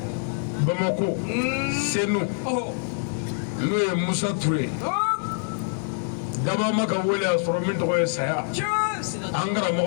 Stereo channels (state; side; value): silent; right; 62 dB below the other